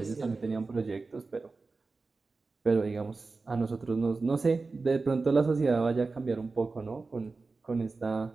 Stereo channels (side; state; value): left; quieter; 3.9 dB